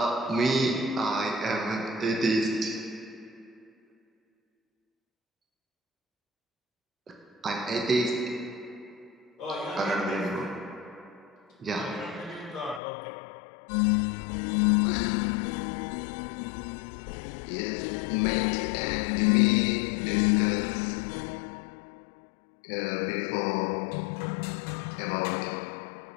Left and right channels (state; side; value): drops out; right; at 12.8 s